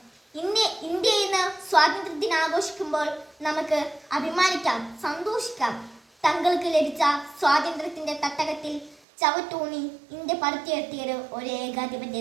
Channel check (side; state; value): left; drops out; at 9.0 s